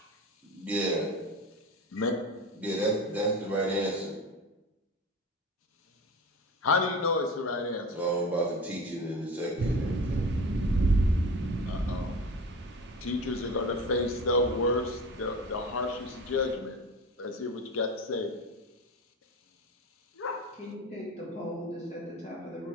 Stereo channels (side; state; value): both; normal; correlation 0.31